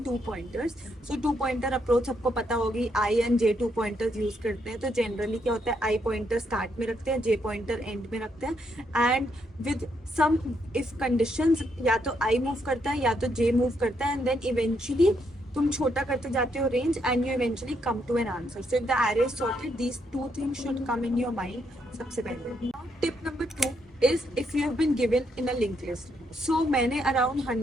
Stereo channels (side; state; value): both; normal; correlation 0.76